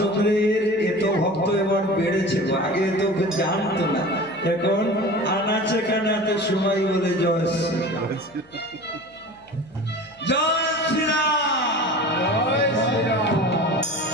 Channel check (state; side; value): noise; left; hum, 29 dB below the sound